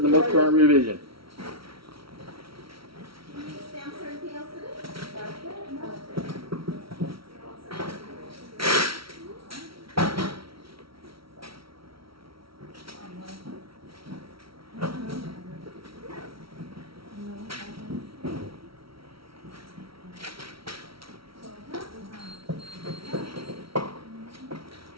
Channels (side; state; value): left; late; 0.75 ms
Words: the most current revision.